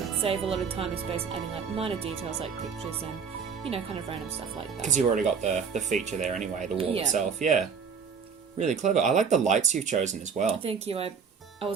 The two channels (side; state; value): left; quieter; 6.2 dB